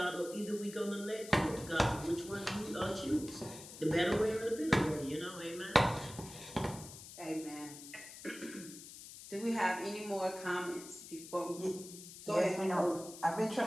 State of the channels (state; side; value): noise; left; hiss, 14 dB below the sound